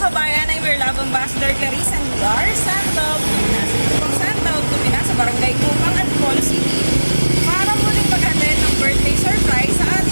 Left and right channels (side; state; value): both; inverted; correlation -1.00